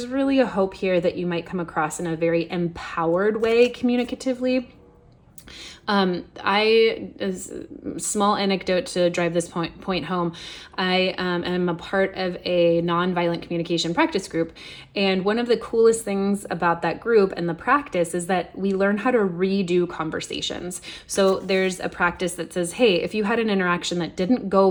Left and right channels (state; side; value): identical; both; correlation 1.00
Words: really a hope here that you might come across in a very empowered way communicatively. Small anecdote to drive this point home. I am a part of a nonviolent communication practice group. And one of the coolest things about that group and the practice is that we learn how to redo conversations. So there's a practice that says, hey, if you had an interaction that didn't go